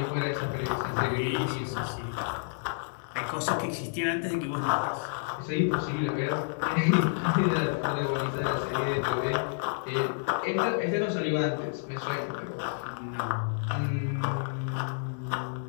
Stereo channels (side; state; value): right; silent; digital silence